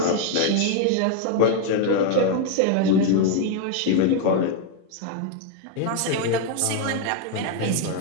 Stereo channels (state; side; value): different; both; correlation 0.01